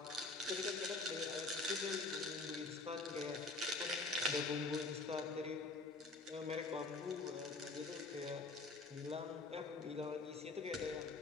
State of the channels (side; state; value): right; quieter; 3.4 dB